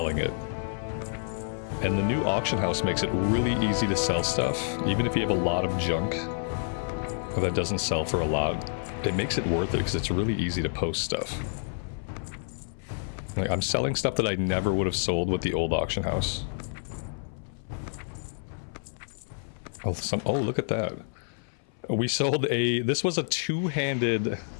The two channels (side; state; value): right; silent; 58 dB below the other